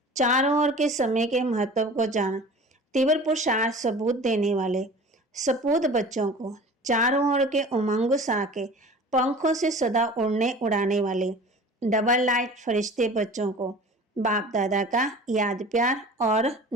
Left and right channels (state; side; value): normal; both; correlation 0.41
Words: चारों ओर के समय के महत्व को जान तीव्र पुरुषार्थ सबूत देने वाले सपूत बच्चों को, चारों ओर के उमंग सा के पंखों से सदा उड़ाने वाले डबल लाइट फरिश्ते बच्चों को बाप दादा का याद प्यार और